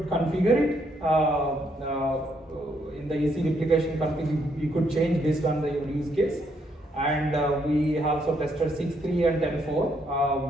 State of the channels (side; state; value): both; normal; correlation 0.73